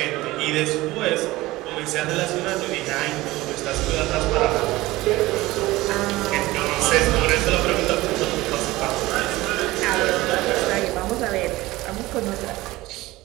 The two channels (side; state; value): left; quieter; 18.7 dB